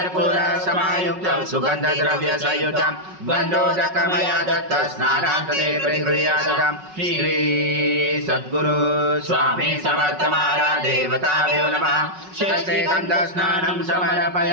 समायुक्तं सुगन्धद्रव्य संयुतं गन्धोदकमया दत्त स्नानान्तरे प्रगृह्यातं श्री सद्गुरु स्वामी समर्थ महाराज देवताभ्यो नमः शेषे गन्धस्नानं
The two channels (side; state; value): left; late; 5.4 ms